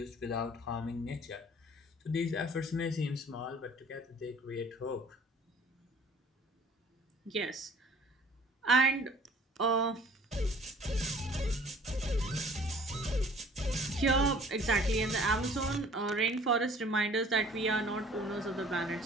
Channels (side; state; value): both; normal; correlation 0.52